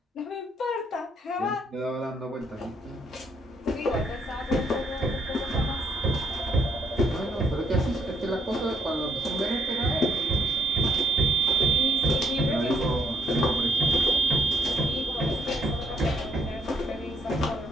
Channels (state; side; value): normal; both; correlation 0.70